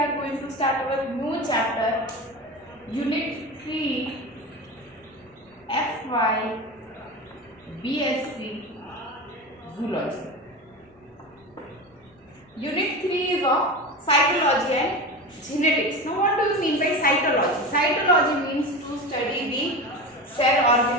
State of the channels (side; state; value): both; normal; correlation 0.26